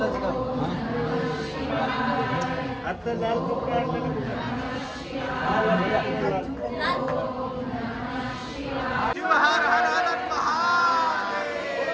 आता लाल कपडा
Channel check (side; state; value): both; identical; correlation 1.00